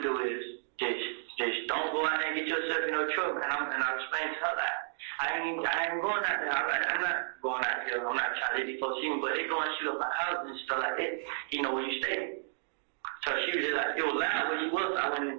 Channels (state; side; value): silent; left; digital silence